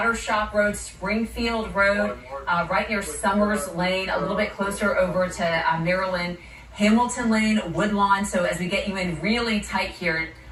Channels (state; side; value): identical; both; correlation 1.00